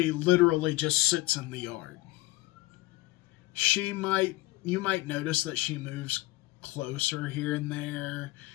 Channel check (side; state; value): right; quieter; 20.3 dB